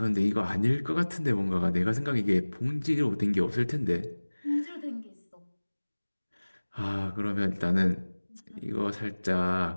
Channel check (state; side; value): inverted; both; correlation -1.00